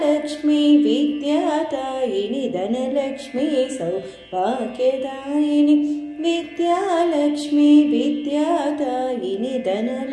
विद्यादायिनी धनलक्ष्मी सौभाग्यदायिनी विद्यालक्ष्मी विद्यादायिनी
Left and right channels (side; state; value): both; identical; correlation 1.00